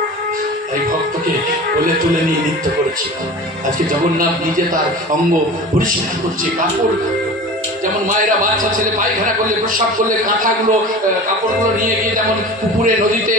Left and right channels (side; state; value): both; normal; correlation 0.36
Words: তাই ভক্তকে কোলে তুলে নিয়ে নৃত্য করেছিল। আজকে জগন্নাথ নিজে তার অঙ্গ পরিষ্কার করছে। কাপড় যেমন মায়েরা বাচ্চা ছেলে পায়খানা করলে প্রস্রাব করলে কাঁথাগুলো কাপড়গুলো নিয়ে গিয়ে যেমন পুকুরে নদীতে